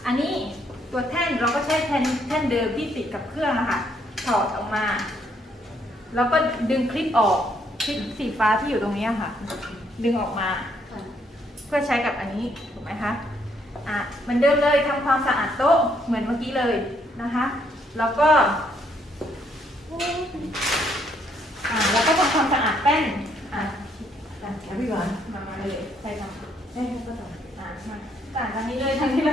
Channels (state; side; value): normal; both; correlation 0.71